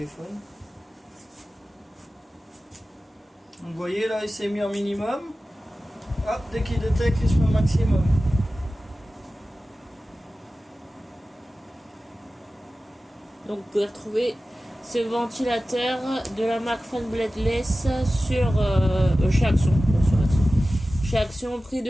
Donc vous voyez là il s'est mis en minimum. Hop, dès qu'il détecte il se met au maximum. Donc vous pouvez retrouver ce ventilateur de la marque Fan Bladeless sur chez Action. Chez Action, prix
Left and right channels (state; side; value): normal; both; correlation 0.95